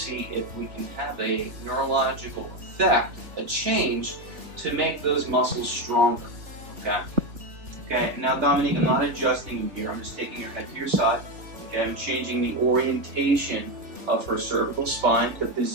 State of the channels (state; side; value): late; left; 3.4 ms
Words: if we can have a neurological effect, a change, to make those muscles stronger. Okay. Okay. Now, Dominique, I'm not adjusting you here. I'm just taking your head to your side. Okay. I'm changing the orientation of her cervical spine, the